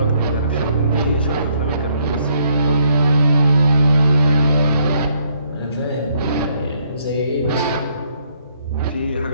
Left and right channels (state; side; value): inverted; both; correlation -0.70